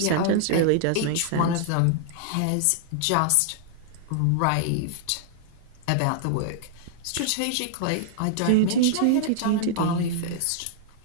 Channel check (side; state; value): both; different; correlation -0.01